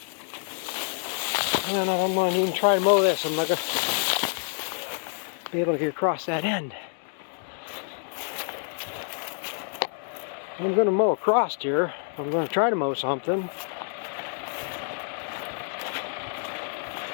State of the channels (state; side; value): silent; right; 60 dB below the other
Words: I don't know if I'm going to even try to mow this. I'm not going to be able to get across that end. I'm going to mow across here. I'm going to try to mow something.